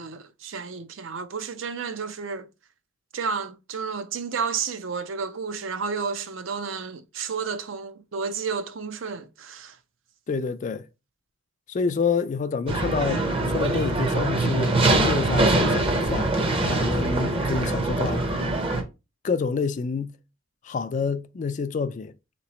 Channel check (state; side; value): normal; both; correlation 0.39